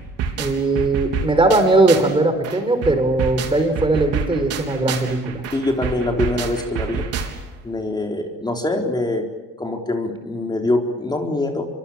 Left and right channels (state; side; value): normal; both; correlation 0.59